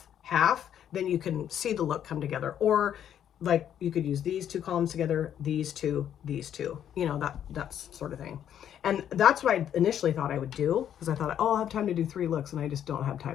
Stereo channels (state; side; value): quieter; right; 9.9 dB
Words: then you can see the look come together. Or like you could use these two columns together, these two, you know, that's sort of thing. And that's what I initially thought I would do, because I thought, oh, I'll have time to do 3 looks, and I just don't have